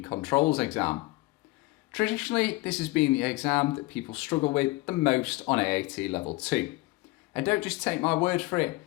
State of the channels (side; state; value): right; quieter; 21.1 dB